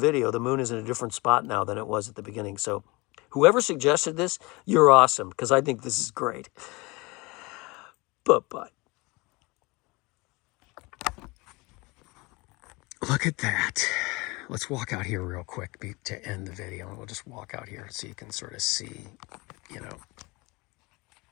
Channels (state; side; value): quieter; right; 24.7 dB